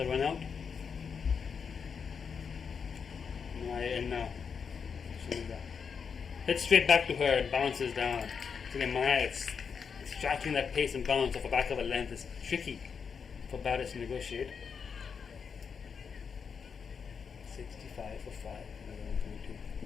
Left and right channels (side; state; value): right; quieter; 6.2 dB